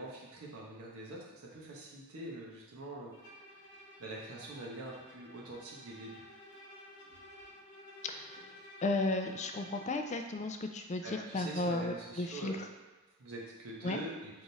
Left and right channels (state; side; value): normal; both; correlation 0.37